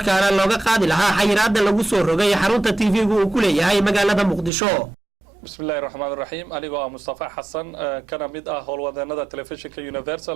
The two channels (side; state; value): left; drops out; at 4.5 s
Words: looga qaadi lahaa xayiraadda lagu soo rogay xarunta TV-gu uu ku leeyahay magaalada Muqdisho. bismillaahir rahmaanir rahiim aniga waa Mustafa Xassan kana mid ah howlwadeennada telefishinka